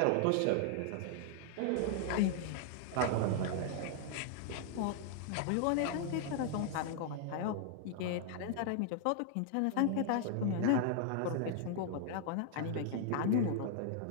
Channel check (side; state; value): both; different; correlation -0.01